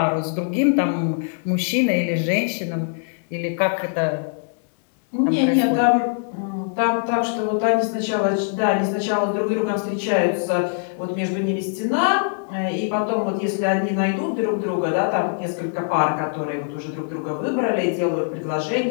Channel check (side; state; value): right; silent; digital silence